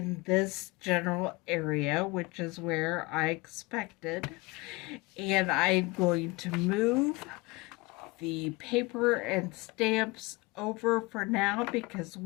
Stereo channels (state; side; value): quieter; right; 24.0 dB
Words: this general area, which is where I expected. And I'm going to move the paper and stamps over for now because